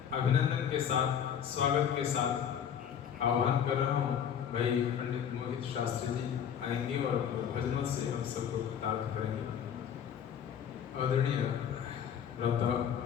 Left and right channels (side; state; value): right; quieter; 8.5 dB